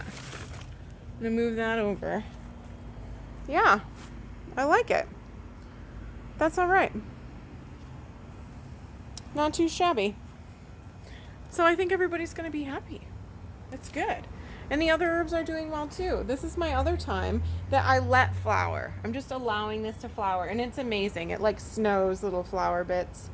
I'm gonna move that over. Yeah, I like it. That's all right. Not too shabby. So I think everybody's gonna be happy. It's good. And the other herbs are doing well too. This is my other thyme that I let flower. I'm just allowing this to flower, and it's amazing. It like snows little flower bits.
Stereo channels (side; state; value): both; identical; correlation 1.00